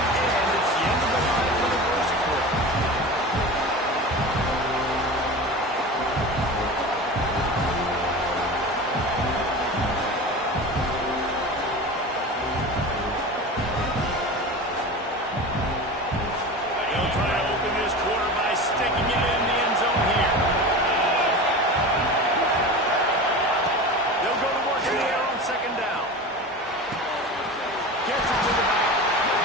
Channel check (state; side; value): normal; both; correlation 0.31